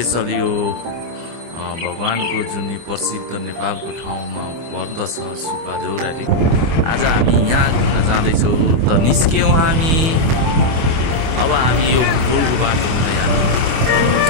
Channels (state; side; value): late; left; 24 ms